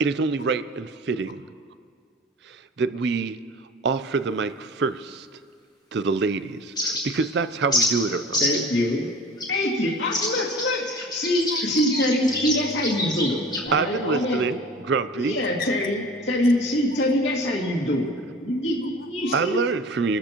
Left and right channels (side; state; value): both; normal; correlation 0.41